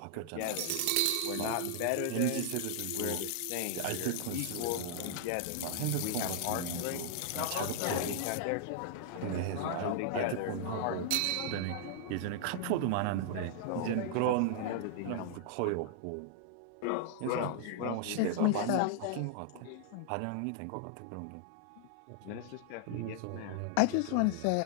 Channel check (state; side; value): different; both; correlation -0.01